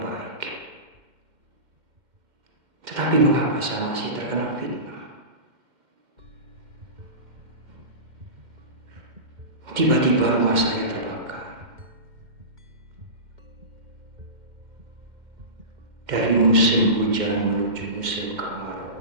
Tetapi mengapa saya masih terkena fitnah? Tiba-tiba rumah saya terbakar. Dari musim hujan menuju musim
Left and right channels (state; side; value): late; left; 2.1 ms